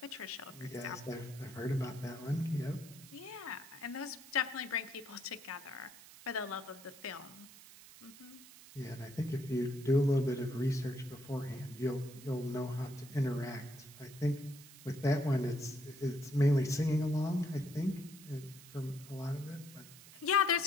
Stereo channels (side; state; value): right; noise; hiss, 18 dB below the sound